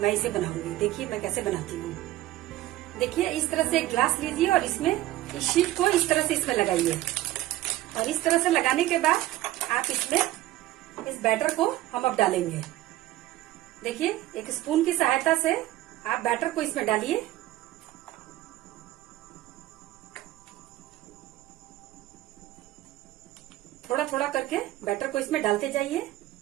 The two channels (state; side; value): quieter; left; 15.4 dB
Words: मैं इसे बनाऊंगी। देखिए मैं कैसे बनाती हूँ। देखिए इस तरह से एक ग्लास लीजिए और इसमें इस शीट को इस तरह से इसमें लगाइए और इस तरह से लगाने के बाद आप इसमें इस बैटर को हम अब डालेंगे। देखिए एक स्पून की सहायता से आप बैटर को इसमें डालिए। थोड़ा थोड़ा करके बैटर को इसमें डालते जाइए। अब